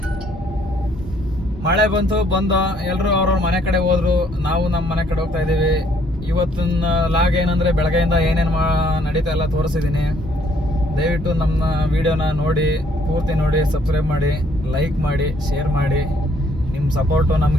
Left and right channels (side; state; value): both; normal; correlation 0.65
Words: ಮಳೆ ಬಂದು ಎಲ್ಲರೂ ಅವ್ರವ್ರ ಮನೆ ಕಡೆ ಹೋದ್ರು, ನಾವು ನಮ್ಮ ಮನೆ ಕಡೆ ಹೋಗ್ತಾ ಇದ್ದೀವಿ. ಇವತ್ತಿನ ಲಾಗ್ ಏನಂದ್ರೆ, ಬೆಳಗ್ಗೆಯಿಂದ ಏನೇನು ನಡೀತಾ ಎಲ್ಲ ತೋರಿಸಿದ್ದೀನಿ. ದಯವಿಟ್ಟು ನಮ್ಮ ವಿಡಿಯೋನ ನೋಡಿ, ಪೂರ್ತಿ ನೋಡಿ, ಸಬ್ಸ್ಕ್ರೈಬ್ ಮಾಡಿ, ಲೈಕ್ ಮಾಡಿ, ಶೇರ್ ಮಾಡಿ. ನಿಮ್ಮ ಸಪೋರ್ಟು